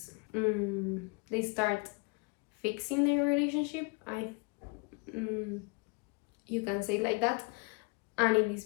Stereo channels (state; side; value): quieter; right; 31.8 dB